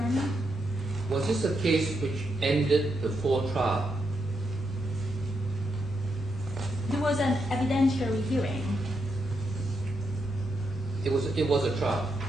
Honor? Was this a case which ended before trial? There was an evidentiary hearing. It was a trial.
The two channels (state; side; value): normal; both; correlation 0.82